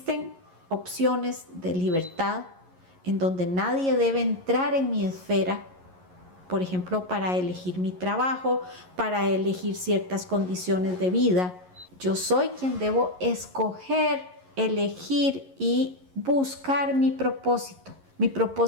opciones de libertad en donde nadie debe entrar en mi esfera, por ejemplo, para elegir mi trabajo, para elegir ciertas condiciones de vida. Yo soy quien debo escoger, elegir y buscar mi propósito. Mi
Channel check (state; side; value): late; left; 11 ms